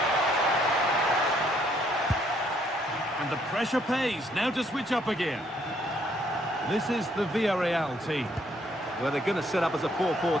And the pressure pays. Now to switch up again. This is the Villarreal team. Well, they're going to set up as a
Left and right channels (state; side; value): normal; both; correlation 0.68